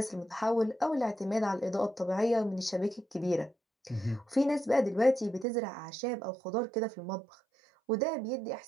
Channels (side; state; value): left; drops out; at 5.5 s